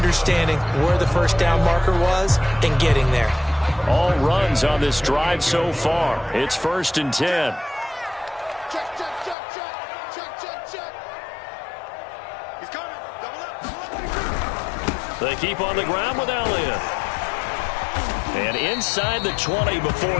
where the 1st down marker was and getting there. All runs on this drive so far. It's 1st and 10. Check, check, check, check. Check, check, check. He's coming. Double up. They keep on the ground with Elliott. And inside the 20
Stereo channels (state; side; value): drops out; right; at 9.3 s